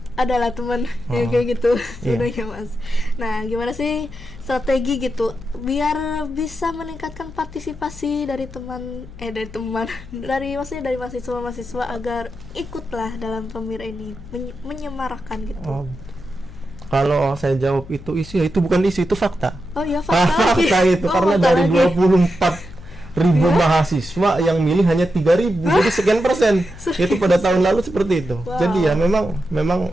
adalah teman yang kayak gitu sebenarnya Mas. Nah, gimana sih strategi gitu biar bisa meningkatkan partisipasi dari maksudnya dari mahasiswa agar ikutlah dalam pemira ini, menyemarakan gitu. Kalau saya jawab itu isu, itu bukan isu, itu fakta. Oh iya, fakta. Fakta itu karena dari 24.000 mahasiswa yang milih hanya 3.000, jadi sekian persen. Itu pada tahun lalu seperti itu. Jadi ya memang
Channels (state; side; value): noise; left; hum, 17 dB below the sound